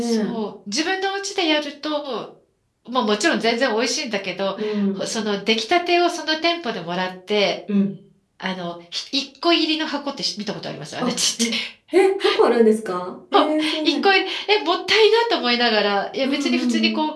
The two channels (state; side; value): identical; both; correlation 1.00